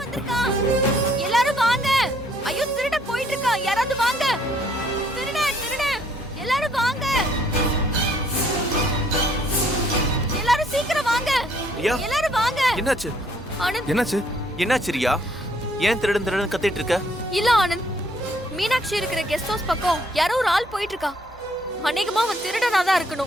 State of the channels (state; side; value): normal; both; correlation 0.65